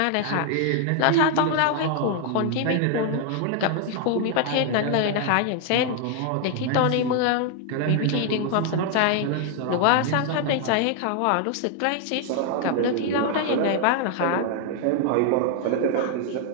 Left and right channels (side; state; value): both; different; correlation 0.00